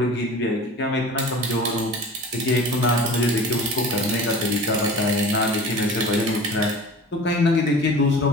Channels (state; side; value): normal; both; correlation 0.39